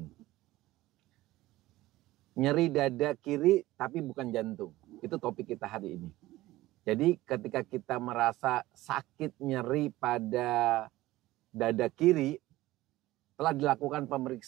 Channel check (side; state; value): left; quieter; 17.2 dB